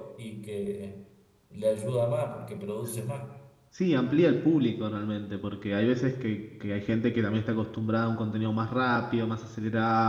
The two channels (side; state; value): both; identical; correlation 1.00